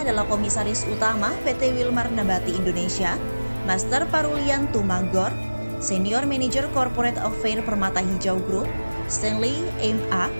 adalah Komisaris Utama PT Wilmar Nabati Indonesia, Master Parulian Tumanggor, Senior Manager Corporate Affairs Permata Hijau Group, Stanley M.A.,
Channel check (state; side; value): inverted; both; correlation -1.00